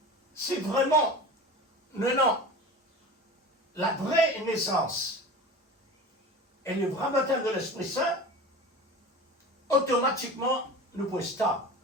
C'est vraiment, non, la vraie naissance et le vrai baptême de l'Esprit Saint, automatiquement, nous pouvons stable.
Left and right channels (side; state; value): both; normal; correlation 0.34